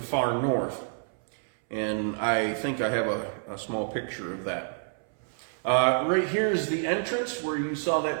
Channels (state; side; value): silent; left; 59 dB below the other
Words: far north. And I think I have a small picture of that. Right here is the entrance where you saw